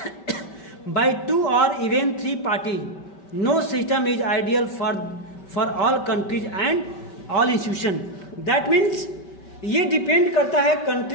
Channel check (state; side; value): late; right; 5.2 ms